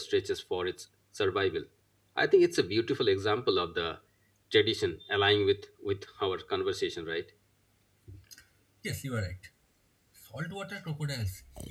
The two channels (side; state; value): both; identical; correlation 1.00